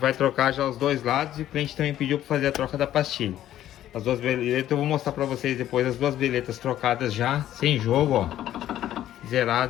trocar já os dois lados e o cliente também pediu para fazer a troca da pastilha. As duas beletas, eu vou mostrar para vocês depois as duas beletas trocadas já, sem jogo, ó.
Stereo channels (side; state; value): right; quieter; 12.4 dB